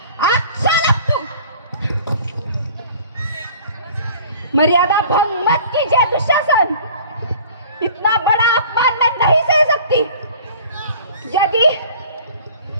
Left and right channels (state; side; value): inverted; both; correlation -0.47